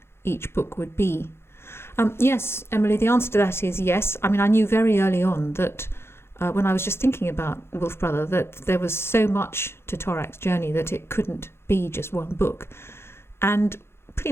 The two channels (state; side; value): late; right; 0.12 ms